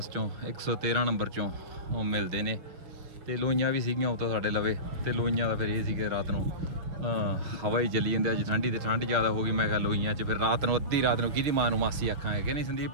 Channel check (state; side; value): late; left; 6.3 ms